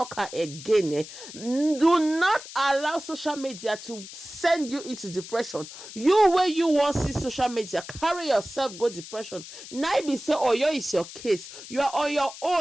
again. Do not allow social media to send you into depression. You where you want see social media, carry yourself go depression. Now be say oh yo is your case, you are on your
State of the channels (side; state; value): left; noise; hiss, 14 dB below the sound